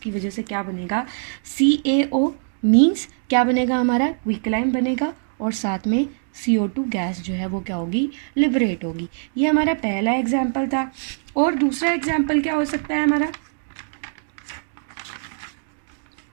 वजह से क्या बनेगा? CaO मीन्स क्या बनेगा हमारा? क्विकलाइन बनेगा और साथ में CO2 गैस जो है वो क्या होगी? लिबरेट होगी। ये हमारा पहला एग्जाम्पल था। और दूसरा एग्जाम्पल क्या हो सकता है हमारा?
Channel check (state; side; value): silent; left; digital silence